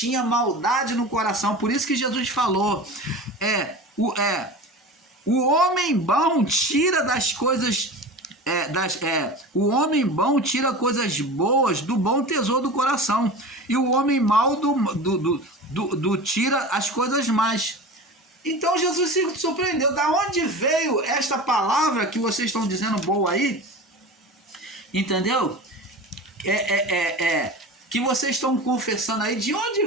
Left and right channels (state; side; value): normal; both; correlation 0.33